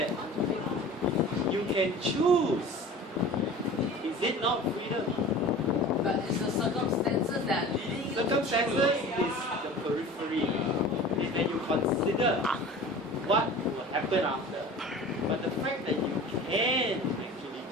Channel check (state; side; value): normal; both; correlation 0.39